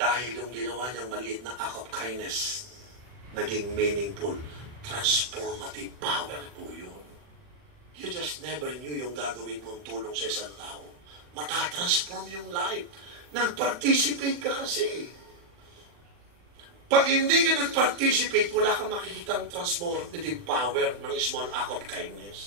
yung ginawa niyang maliit na act of kindness, naging meaningful, transformative power po yun. You just never knew yung gagawin mong tulong sa isang tao. Matatransform yung life. Nag-participate ka kasi. Pag hindi ka nag-participate, wala kang makikitang transformative power ng small act of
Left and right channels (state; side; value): late; left; 40 ms